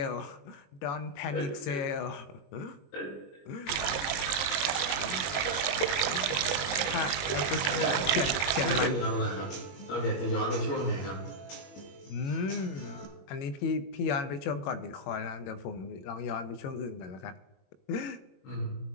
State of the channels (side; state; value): right; late; 21 ms